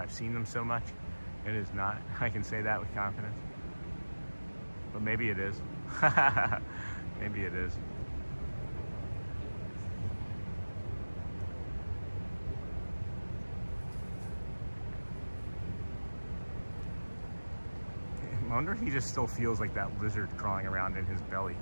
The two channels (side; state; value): both; inverted; correlation -1.00